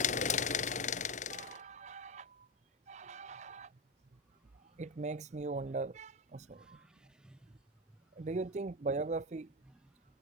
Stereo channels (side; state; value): both; normal; correlation 0.12